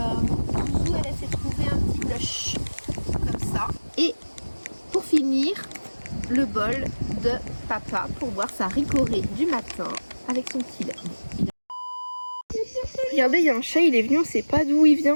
elle s'est trouvé un petit blush, comme ça. Et pour finir, le bol de papa pour boire sa ricorée du matin avec son petit lait. Regardez, il y a un chat, il est venu, on sait pas d'où il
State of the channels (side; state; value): both; inverted; correlation -1.00